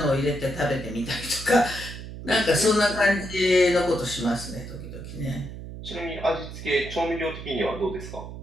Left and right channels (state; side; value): noise; right; hum, 11 dB below the sound